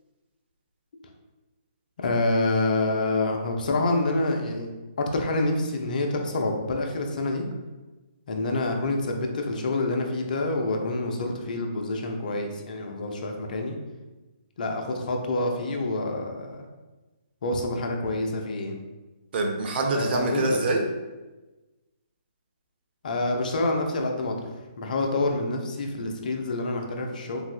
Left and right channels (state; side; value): inverted; both; correlation -0.66